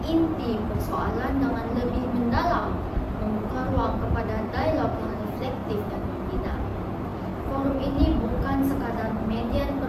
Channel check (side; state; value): both; identical; correlation 1.00